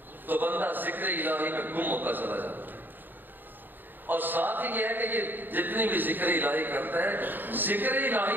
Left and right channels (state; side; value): late; left; 0.092 ms